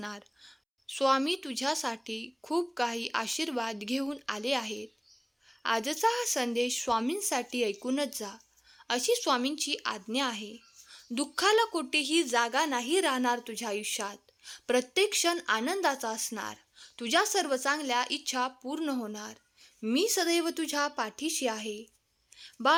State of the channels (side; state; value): both; identical; correlation 1.00